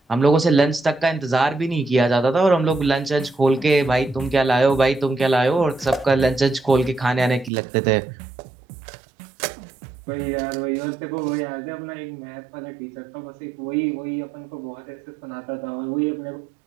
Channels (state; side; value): drops out; left; at 7.5 s